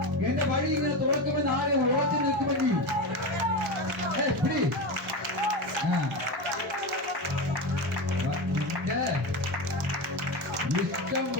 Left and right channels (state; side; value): normal; both; correlation 0.19